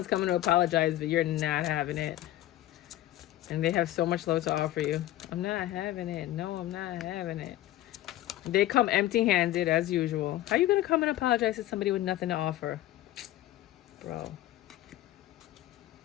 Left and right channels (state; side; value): quieter; right; 14.5 dB